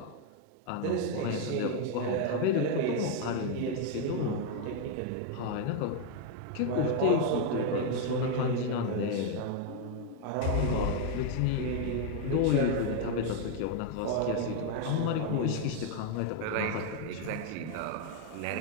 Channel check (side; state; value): both; different; correlation 0.01